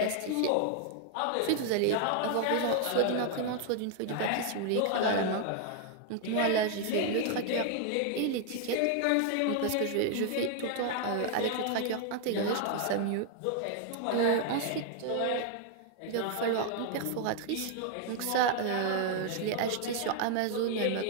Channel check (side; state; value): both; different; correlation 0.00